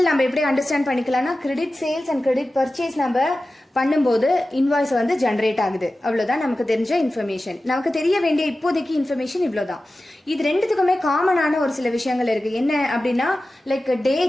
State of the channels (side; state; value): both; normal; correlation 0.95